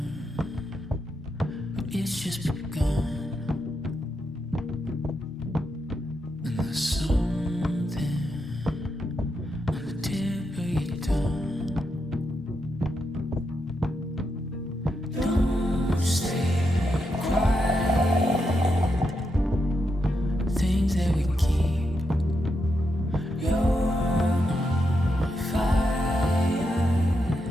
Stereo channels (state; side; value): normal; both; correlation 0.84